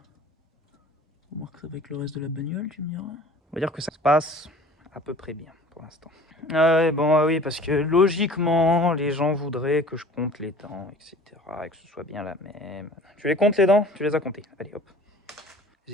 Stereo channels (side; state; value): both; normal; correlation 0.46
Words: On remarque avec le reste de la bagnole, tu me diras. On va dire que ça se passe à peu près bien pour l'instant. Ah ouais, bon, oui, parce que logiquement, les gens voudraient que je compte les dents, etc. Et que ce soit bien la même. Tu les comptes les dents? Tu les as comptées. Allez, hop. Les